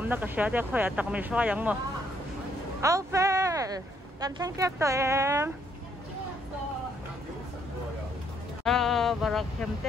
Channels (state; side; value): normal; both; correlation 0.70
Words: na ka sha de khoya tak mi shwa yang mo. Aufel. Kan thang kep to em. Barak